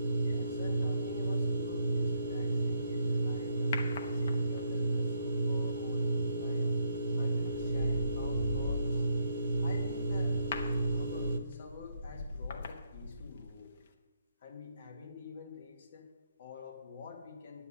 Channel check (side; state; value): both; inverted; correlation -0.75